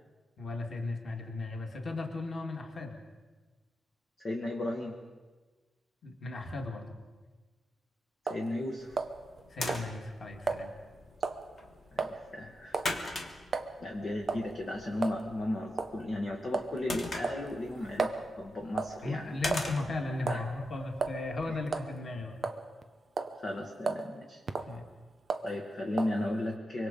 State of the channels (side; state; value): both; normal; correlation 0.87